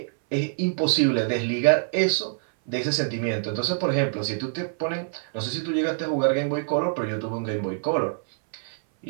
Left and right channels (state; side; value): silent; left; 59 dB below the other